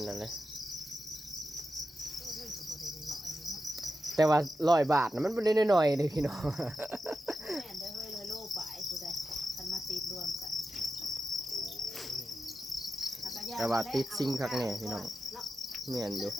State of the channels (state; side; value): normal; both; correlation 0.90